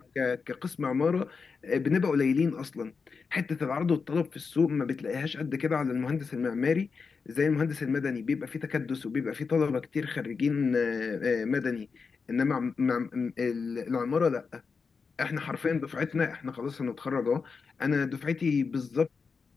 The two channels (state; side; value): quieter; right; 5.1 dB